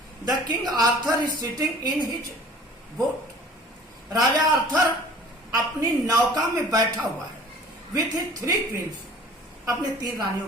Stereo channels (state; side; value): normal; both; correlation 0.48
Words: the King Arthur is sitting in his boat, राजा आर्थर अपनी नौका में बैठा हुआ है, विथ हिज 3 क्वींस, अपने 3 रानियों